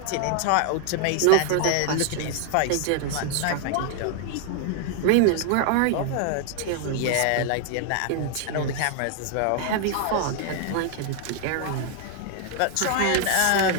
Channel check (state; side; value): different; both; correlation 0.00